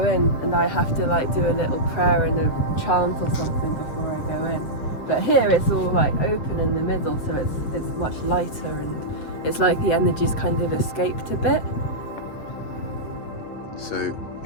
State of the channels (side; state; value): right; late; 7.6 ms